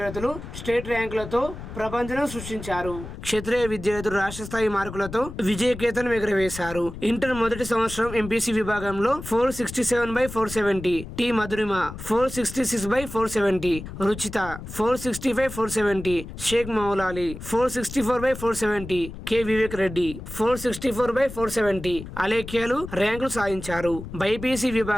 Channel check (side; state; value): left; noise; rumble, 11 dB below the sound